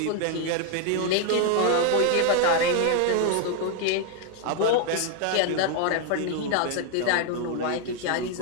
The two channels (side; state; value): both; different; correlation 0.00